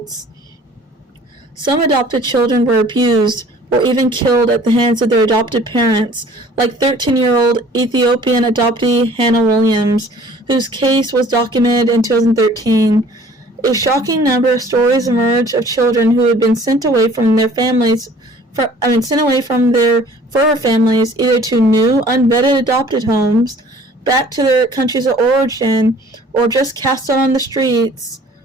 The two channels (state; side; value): normal; both; correlation 0.52